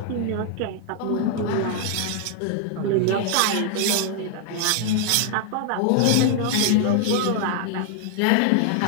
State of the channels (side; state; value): both; different; correlation 0.00